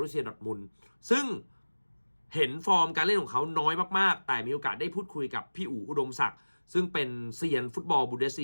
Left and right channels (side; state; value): both; inverted; correlation -1.00